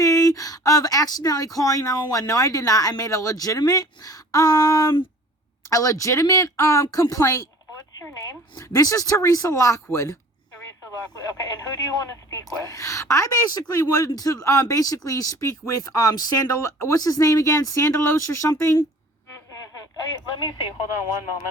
of accidentally calling 911. No, I did not. I made a legitimate complaint. What's your name? This is Teresa Lockwood. Okay, and who do you want to speak with? I basically wanted to speak with what's his name again? Sandalos or something? Mm-hmm. Let me see. Hold on one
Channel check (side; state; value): both; normal; correlation 0.47